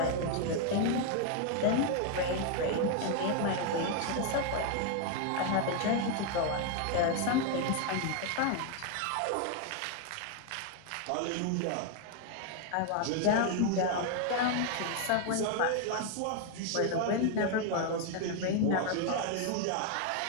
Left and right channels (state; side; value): different; both; correlation 0.01